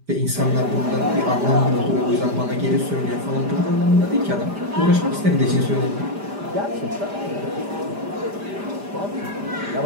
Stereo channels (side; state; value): left; late; 5.0 ms